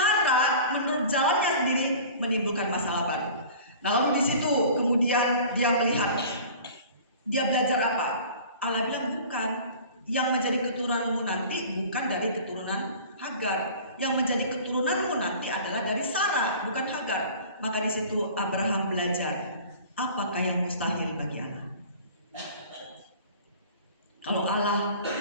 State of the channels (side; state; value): both; inverted; correlation -0.43